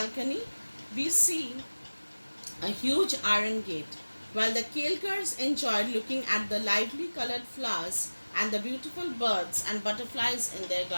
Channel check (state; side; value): inverted; both; correlation -1.00